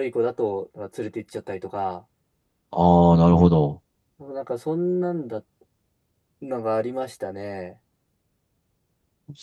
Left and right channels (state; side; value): identical; both; correlation 1.00